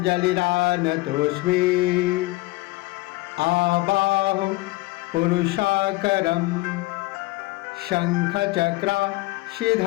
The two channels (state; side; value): quieter; right; 21.0 dB